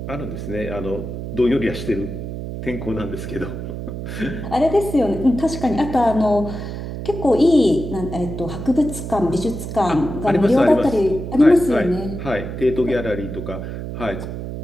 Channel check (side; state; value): right; noise; hum, 7 dB below the sound